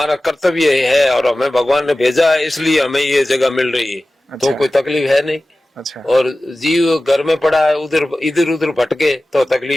कर्तव्य है, और हमें भगवान ने भेजा है, इसलिए हमें ये जगह मिल रही है। अच्छा। तो कोई तकलीफ है नहीं। अच्छा। और जीव घर में पड़ा है, इधर उधर भटके तो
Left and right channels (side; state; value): both; normal; correlation 0.96